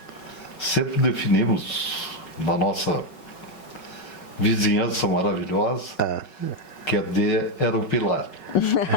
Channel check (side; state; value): right; late; 5.4 ms